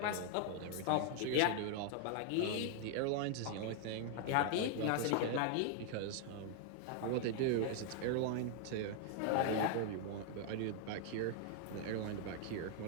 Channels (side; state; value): both; different; correlation 0.00